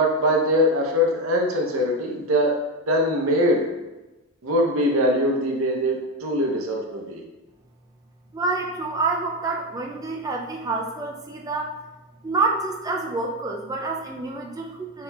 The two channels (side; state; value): both; normal; correlation 0.12